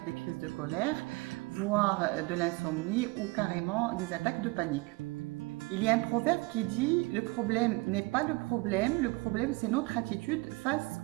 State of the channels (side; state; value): left; quieter; 24.6 dB